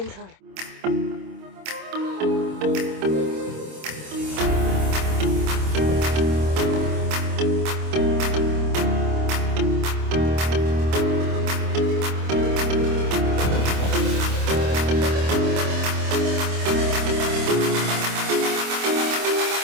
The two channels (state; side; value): late; left; 26 ms